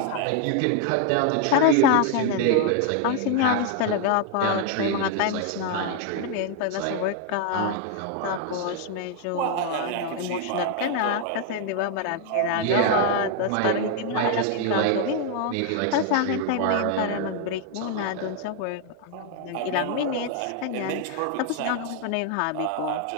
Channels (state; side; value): different; both; correlation 0.00